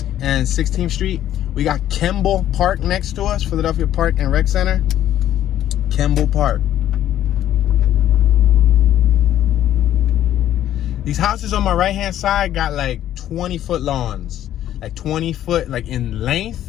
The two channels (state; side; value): quieter; right; 11.9 dB